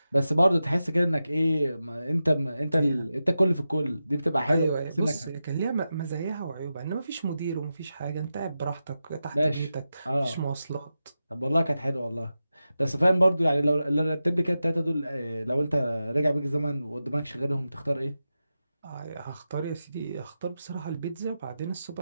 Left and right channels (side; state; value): both; inverted; correlation -0.91